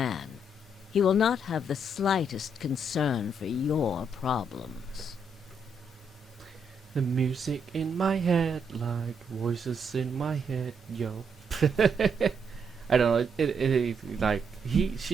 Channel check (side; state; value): both; normal; correlation 0.76